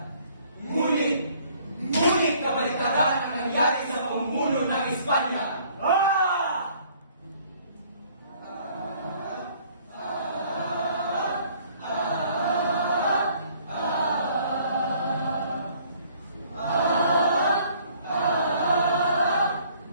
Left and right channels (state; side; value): inverted; both; correlation -0.59